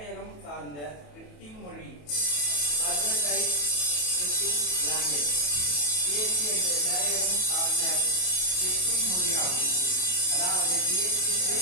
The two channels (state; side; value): late; right; 28 ms